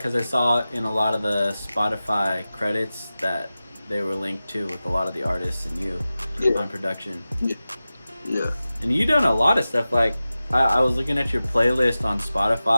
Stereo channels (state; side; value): inverted; both; correlation -0.95